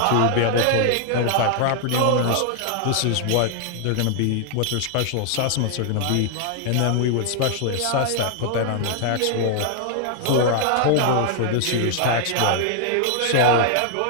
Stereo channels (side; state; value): both; different; correlation 0.00